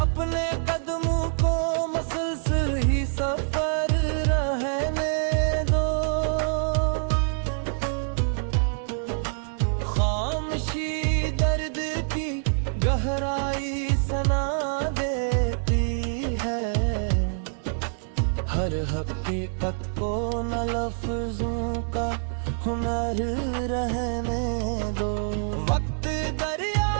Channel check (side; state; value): left; silent; 61 dB below the other